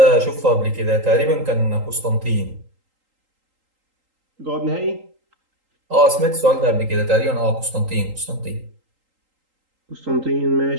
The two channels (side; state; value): left; late; 3.8 ms